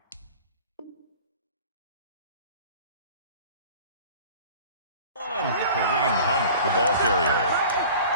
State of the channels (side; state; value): both; inverted; correlation -0.43